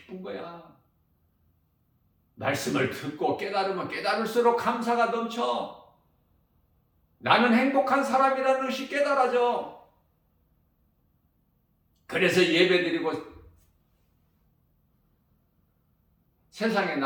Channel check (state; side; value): identical; both; correlation 1.00